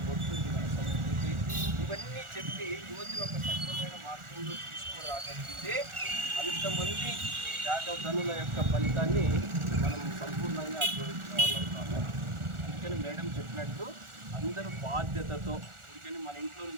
బొట్టు, ఇది మన సంస్కృతి, ఇవన్నీ చెప్పి యువతిని ఒక సక్రమైన మార్గంలో తీసుకురాగలిగితే అంతమంది త్యాగధనుల యొక్క ఫలితాన్ని మనం సంపూర్ణంగా అనుభవించగలుగుతాము. అందుకని ఇందాక చెప్పినట్టు అందరూ బాధ్యతతో, అందుకని మన ఇంట్లో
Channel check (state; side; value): late; left; 1.4 ms